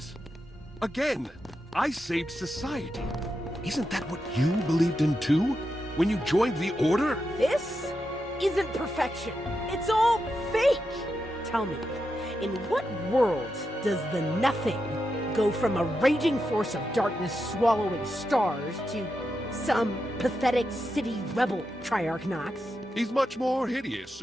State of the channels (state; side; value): normal; both; correlation 0.87